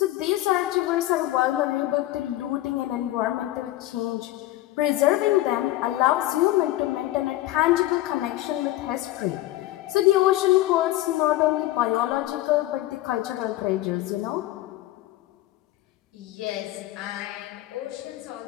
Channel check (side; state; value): right; quieter; 15.9 dB